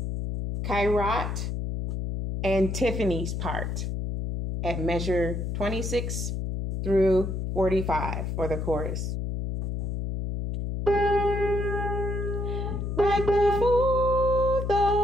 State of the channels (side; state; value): left; noise; hum, 3 dB below the sound